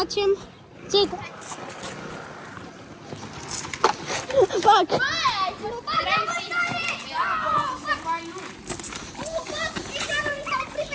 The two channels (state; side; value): identical; both; correlation 1.00